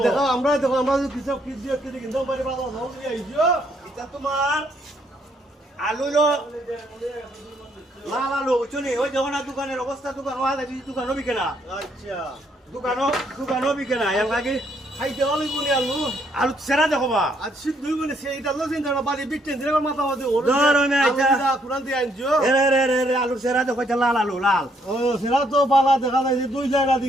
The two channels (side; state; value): both; normal; correlation 0.70